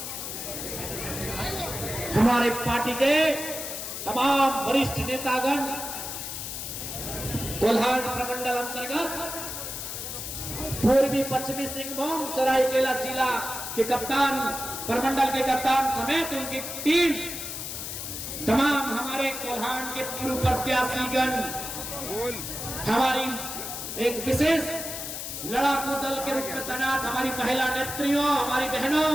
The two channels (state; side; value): noise; left; hiss, 6 dB below the sound